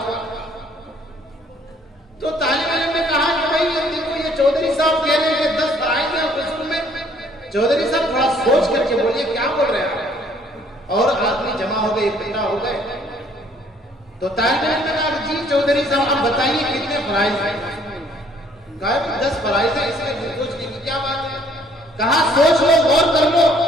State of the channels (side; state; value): both; normal; correlation 0.62